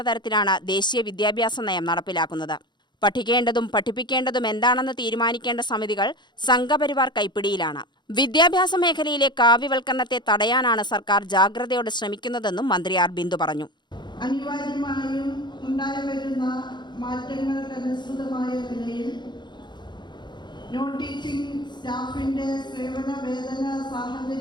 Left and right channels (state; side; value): late; right; 0.21 ms